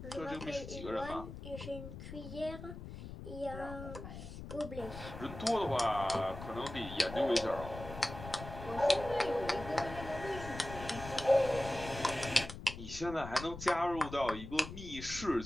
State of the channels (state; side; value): noise; left; rumble, 11 dB below the sound